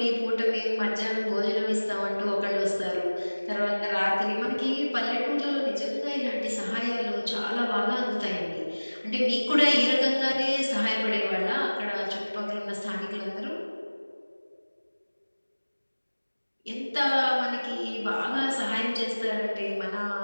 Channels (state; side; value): inverted; both; correlation -1.00